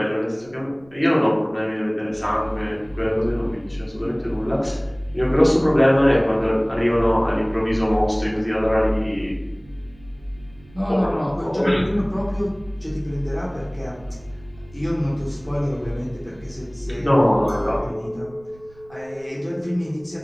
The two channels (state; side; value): noise; right; rumble, 26 dB below the sound